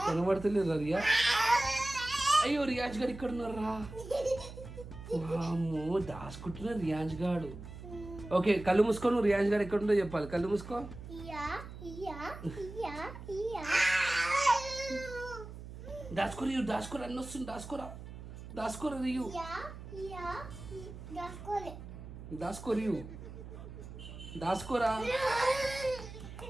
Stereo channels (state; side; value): noise; right; hum, 12 dB below the sound